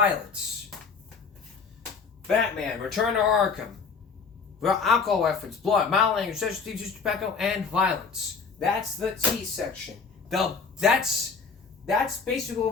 Batman, Return to Arkham. Alcohol reference, blood, mild language, sexual themes, use of tobacco, and violence. That's the T section. That's basically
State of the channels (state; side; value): quieter; right; 5.2 dB